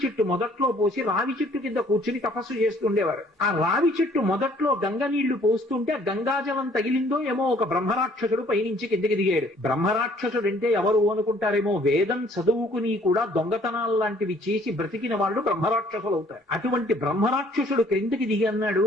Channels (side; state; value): both; normal; correlation 0.59